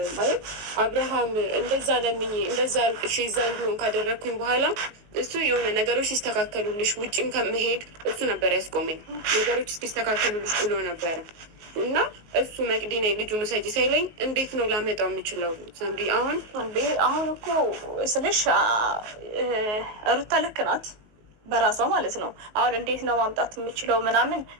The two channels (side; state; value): left; late; 19 ms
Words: ማለት አብርሃም እንደዛ ለምኝ እንደዛ አልቅሽ እዛ እንዲሆን ካደረግኩኝ በኋላ እሱ የሆነ ነገሮች ሲስተካከሉልሽ ውጭም ከመሄድ እሱ ነበር ያስቆመኝ። ነገሮች ሲስተካከሉልሽ ብሎ ነበረ እና እሱ መቅዲና ልጁን ውሰጂ ሳይለኝ እንዴት ነው ላመጣው የምችለው? ሳምሪ አሁን እኮ ስልሽ ሩታ ልክ ናት በራሷ ማለት ነው። አሁን እንዴት ነው ማምጣት የምችለው ምናምን